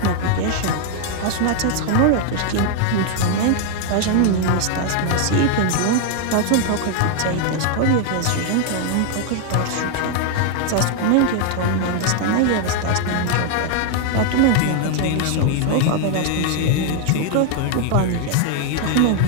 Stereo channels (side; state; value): both; different; correlation 0.00